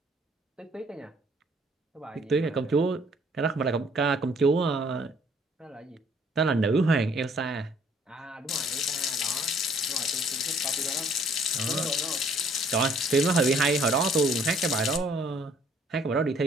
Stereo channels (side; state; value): both; normal; correlation 0.61